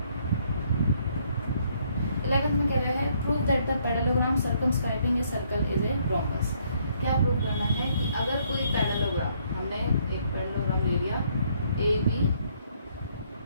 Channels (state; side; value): inverted; both; correlation -0.68